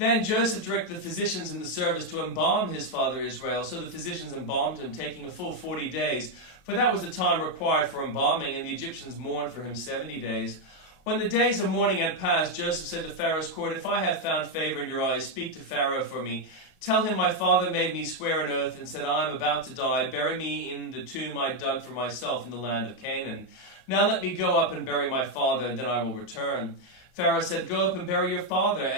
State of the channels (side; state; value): right; late; 31 ms